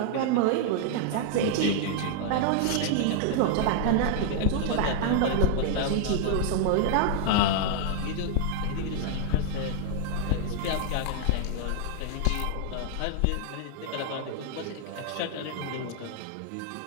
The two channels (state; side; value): different; both; correlation 0.00